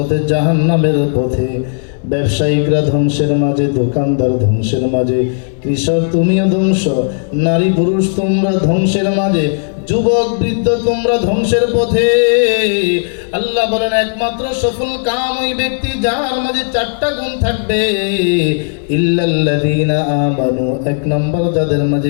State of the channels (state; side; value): silent; right; 71 dB below the other